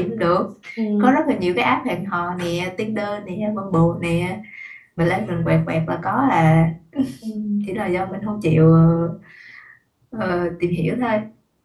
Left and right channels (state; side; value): identical; both; correlation 1.00